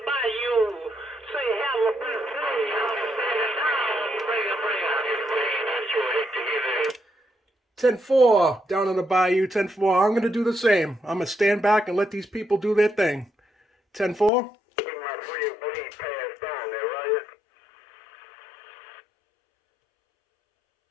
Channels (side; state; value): right; drops out; at 14.3 s